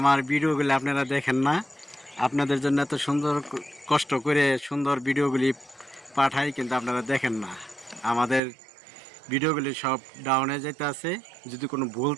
ভিডিওগুলি আপনারা দেখেন না, আপনাদের জন্য এত সুন্দর কষ্ট করে সুন্দর ভিডিওগুলি পাঠাই, কিন্তু আপনারা দেখেন না। আমাদের ভিডিওগুলি সব ডাউনে যেতে আছে। যদি কোনো ভুল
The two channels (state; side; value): drops out; left; at 8.4 s